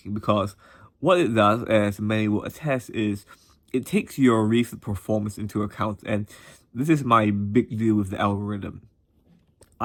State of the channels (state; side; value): identical; both; correlation 1.00